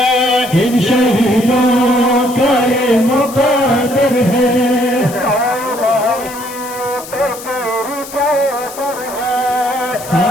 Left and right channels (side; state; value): left; noise; hiss, 14 dB below the sound